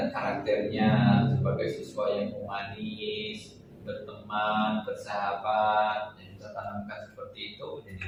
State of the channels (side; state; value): both; identical; correlation 1.00